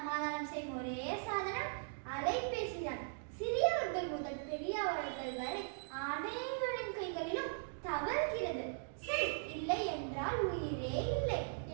செய்யும் ஒரே சாதனம் அலைபேசி தான். சிறியவர்கள் முதல் பெரியவர்கள் வரை அனைவரின் கைகளிலும் தவறுகிறது. சரி, இல்லை என்றால் உயிரே இல்லை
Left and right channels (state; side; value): silent; left; digital silence